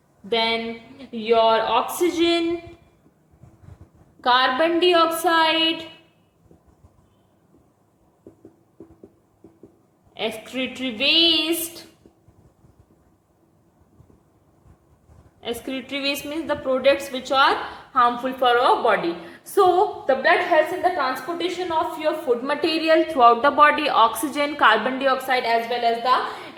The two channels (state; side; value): identical; both; correlation 1.00